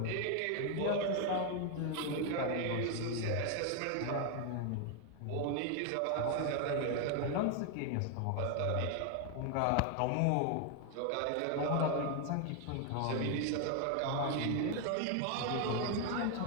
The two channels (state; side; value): different; both; correlation 0.01